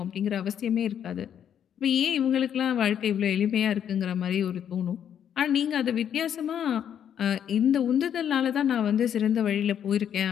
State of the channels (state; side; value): quieter; right; 9.1 dB